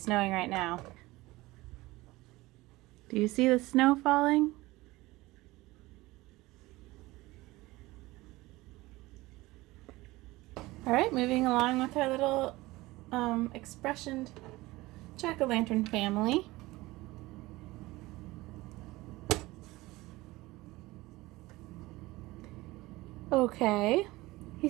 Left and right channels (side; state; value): left; quieter; 19.8 dB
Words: snowing right now. Do you see the snow falling? Alright, moving along with our little expressioned jack-o'-lantern family. Okay, he